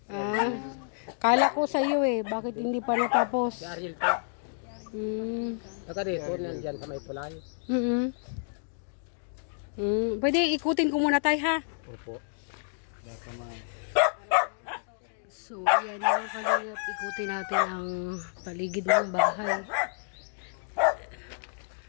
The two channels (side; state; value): right; silent; digital silence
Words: Kala ko sa iyo bakit hindi pa natapos? Si Ariel to. Saka dito, nandyan sa may tulay. Pwede ikutin ko muna tayo ha. Opo. So, yan mga kalingap, ikutin natin ang paligid ng bahay.